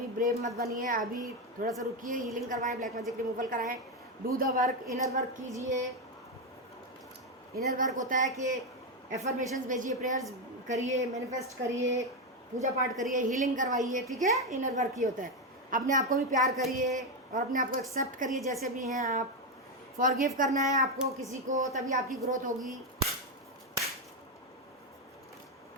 ब्रेव मत बनिए, अभी थोड़ा सा रुकिए। हीलिंग करवाएं, ब्लैक मैजिक रिमूवल कराएं, do the work, inner work कीजिए। इनर वर्क होता है कि एफर्मेशंस भेजिए, प्रेयर्स करिए, मैनिफेस्ट करिए, पूजा पाठ करिए, हीलिंग करवाइए, ठीक है। इनर वर्क ही होता है। अपने आप को भी प्यार करिए और अपने आप को एक्सेप्ट करिए जैसे भी हैं आप। फॉरगिव करना है आपको किसी को, तभी आपकी ग्रोथ होगी।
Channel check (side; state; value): both; normal; correlation 0.07